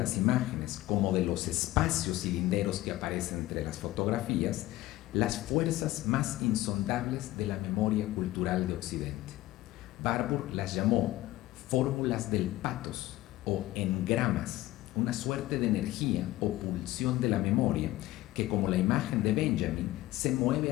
imágenes como de los espacios cilinderos que aparecen entre las fotografías, las fuerzas más insondables de la memoria cultural de Occidente. Warburg las llamó fórmulas del pathos o engramas, una suerte de energía o pulsión de la memoria que, como la imagen de Benjamin, se mueve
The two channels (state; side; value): quieter; right; 16.6 dB